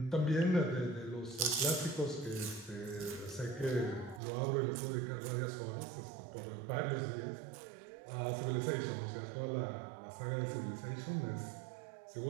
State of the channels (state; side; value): drops out; left; at 4.2 s